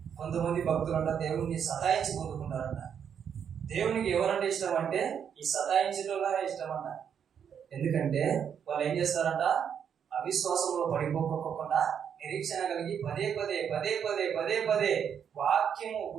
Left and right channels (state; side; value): quieter; left; 8.0 dB